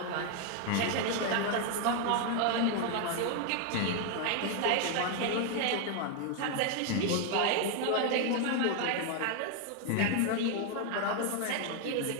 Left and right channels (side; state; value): both; different; correlation 0.01